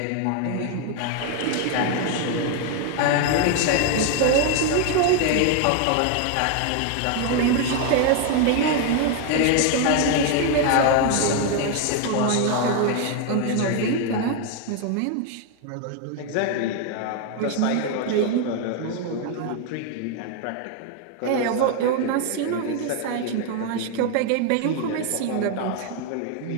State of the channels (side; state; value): both; different; correlation 0.01